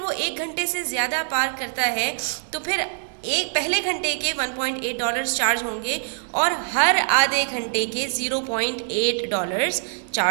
1 घंटे से ज़्यादा पार्क करता है तो फिर पहले घंटे के $1.8 चार्ज होंगे और हर आधे घंटे के $0.8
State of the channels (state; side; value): silent; left; 60 dB below the other